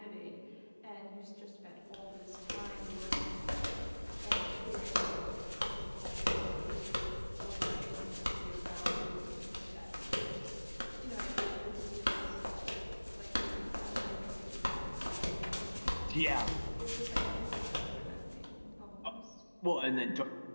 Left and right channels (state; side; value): inverted; both; correlation -1.00